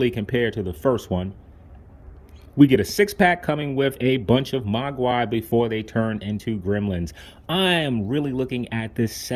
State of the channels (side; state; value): both; identical; correlation 1.00